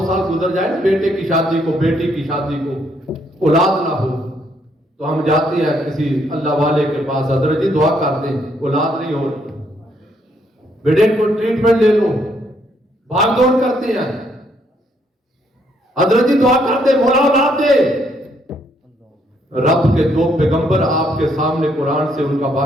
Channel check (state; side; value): normal; both; correlation 0.71